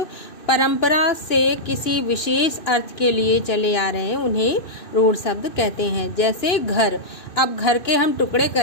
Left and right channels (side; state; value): right; late; 2.6 ms